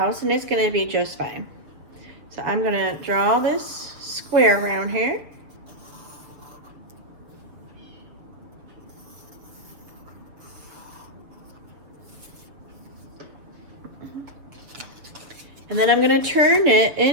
and it's gonna be just fine. So I'm gonna draw this square around here. And then I'm going to turn it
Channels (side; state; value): left; late; 7.1 ms